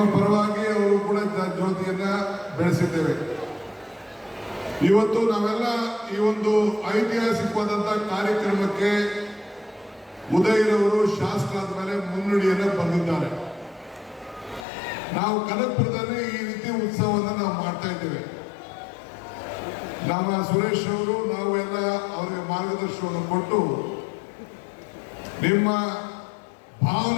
ಪರವಾಗಿ ಅವರು ಕೂಡ ಜ್ಯೋತಿಯನ್ನ ಬೆಳೆಸಿದ್ದೇವೆ. ಇವತ್ತು ನಾವೆಲ್ಲ ಈ ಒಂದು ಐತಿಹಾಸಿಕವಾದಂತಹ ಕಾರ್ಯಕ್ರಮಕ್ಕೆ ಉದಯರವರು ಶಾಸಕರಾದ ಮೇಲೆ ಮುನ್ನುಡಿಯನ್ನ ಬರೆದಿದ್ದಾರೆ. ನಾವು ಕನಕಪುರದಲ್ಲಿ ಈ ರೀತಿ ಉತ್ಸವವನ್ನು ನಾವು ಮಾಡ್ತಾ ಇದ್ದೇವೆ. ನಮ್ಮ ಸುರೇಶ್ ಅವರು, ನಾವು ಎಲ್ಲ ಅವರಿಗೆ ಮಾರ್ಗದರ್ಶನವನ್ನು ಕೊಟ್ಟು ನಿಮ್ಮ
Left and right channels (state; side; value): drops out; right; at 14.7 s